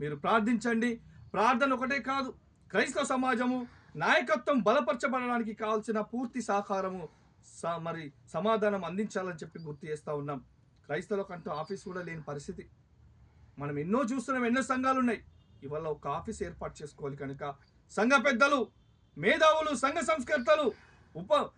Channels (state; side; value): identical; both; correlation 1.00